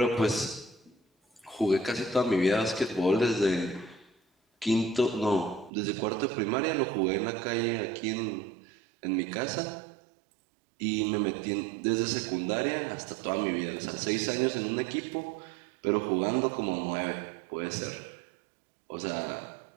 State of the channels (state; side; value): drops out; left; at 5.7 s